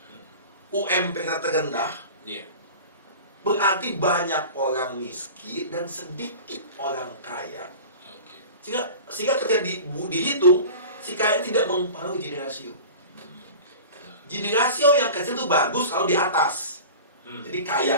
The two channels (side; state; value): both; inverted; correlation -0.36